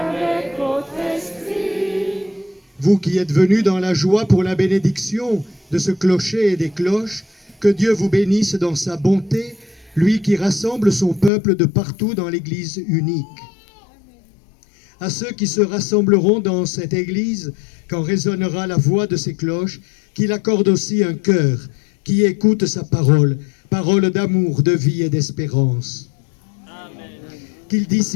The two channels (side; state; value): right; drops out; at 11.3 s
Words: votre esprit. Vous qui êtes venus dans la joie pour la bénédiction de ce clocher et des cloches, que Dieu vous bénisse dans sa bonté, lui qui rassemble son peuple de partout dans l'Église unique. À ceux qui se rassembleront dans cette Église, quand résonnera la voix de ces cloches, qu'il accorde aussi un cœur qui écoute sa parole, parole d'amour, de vie et d'espérance. Qu'il